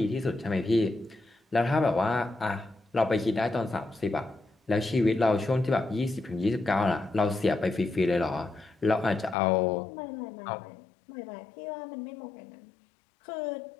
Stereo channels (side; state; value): right; drops out; at 9.3 s